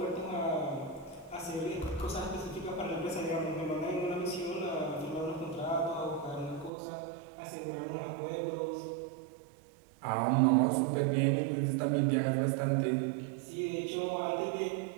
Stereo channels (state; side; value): drops out; left; at 6.7 s